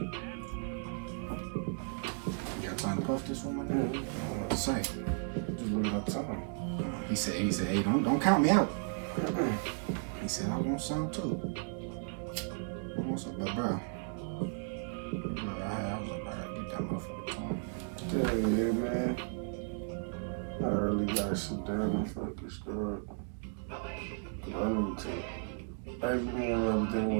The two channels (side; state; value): left; silent; 55 dB below the other